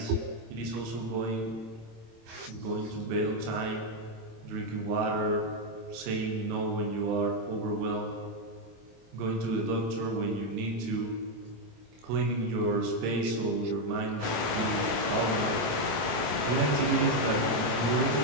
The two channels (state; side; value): late; left; 27 ms